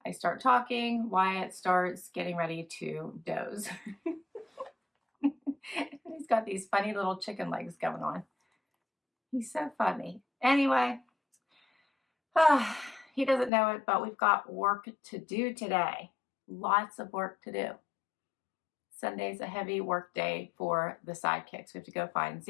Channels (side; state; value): right; drops out; at 13.5 s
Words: I start talking, Wyatt starts getting ready to doze. He's got these funny little chicken legs going on. He's so funny. Anyway, he doesn't know it, but we've got work to do today. Lots of work to do. Sunday's a heavy work day for the sidekicks. We have to go find